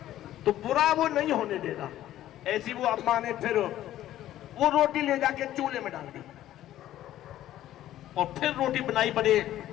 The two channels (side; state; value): right; quieter; 13.2 dB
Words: तो बुरा वो नहीं होने देगा। ऐसी वो अम्मा ने फिर वो रोटी ले जाके चूल्हे में डाल दी, और फिर रोटी बनाई बड़े